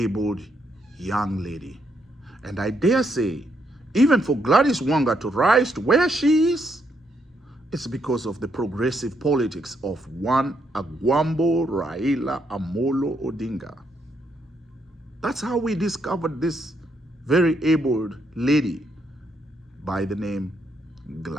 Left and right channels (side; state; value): both; normal; correlation 0.76